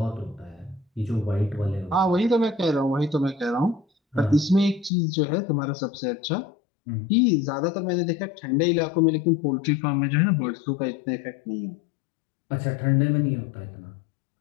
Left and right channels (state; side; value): drops out; right; at 4.9 s